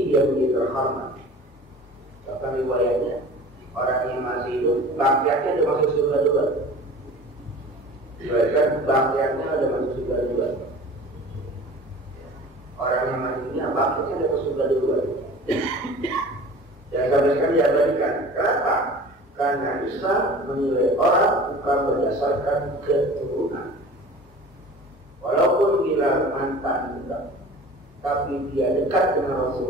dia begitu terhormat. Bahkan riwayatnya orang yang masih hidup, bangkiannya ada masuk surga juga. Diriwayatkan bangkiannya ada masuk surga juga. Orang yang masih dunia, bangkiannya ada masuk surga juga. Dan sampai sekarang diabadikan. Kenapa? Karena Islam menilai orang bukan berdasarkan keturunan. Walaupun Bilal mantan budak, tapi dia dekat dengan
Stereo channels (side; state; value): both; normal; correlation 0.41